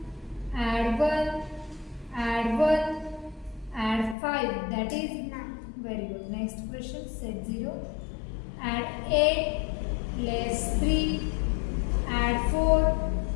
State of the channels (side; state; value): right; drops out; at 4.2 s